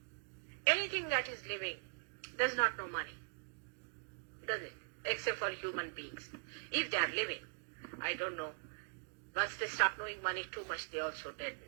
Anything that is living does not know money, does it? Except for human beings. If they are living, I don't know. Once they start knowing money too much, they also dead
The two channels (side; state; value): left; quieter; 38.8 dB